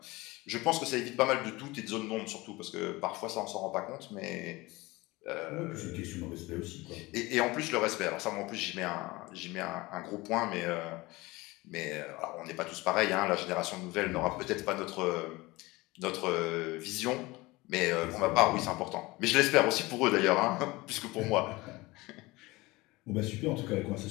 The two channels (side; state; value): right; quieter; 21.6 dB